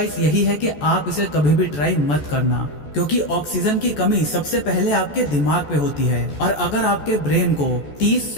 यही है कि आप इसे कभी भी ट्राई मत करना, क्योंकि ऑक्सीजन की कमी सबसे पहले आपके दिमाग पे होती है और अगर आपके ब्रेन को 30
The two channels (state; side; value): late; right; 14 ms